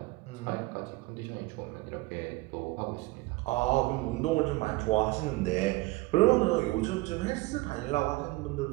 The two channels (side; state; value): left; quieter; 21.0 dB